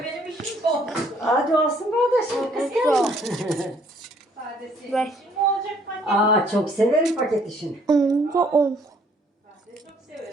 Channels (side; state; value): both; normal; correlation 0.63